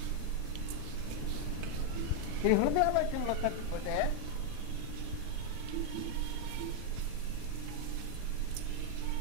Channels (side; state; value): both; different; correlation 0.00